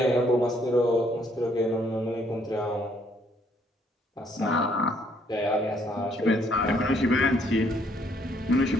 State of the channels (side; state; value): both; normal; correlation 0.68